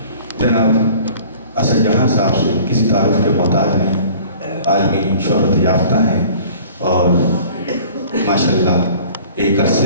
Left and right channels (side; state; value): both; inverted; correlation -0.48